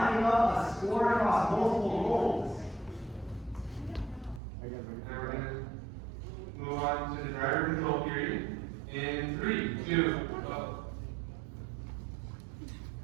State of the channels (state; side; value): drops out; left; at 4.4 s